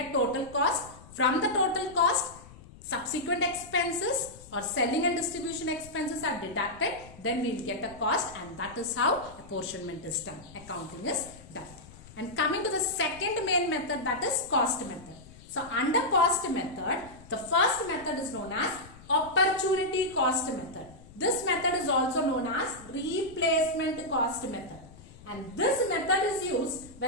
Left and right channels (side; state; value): left; noise; rumble, 20 dB below the sound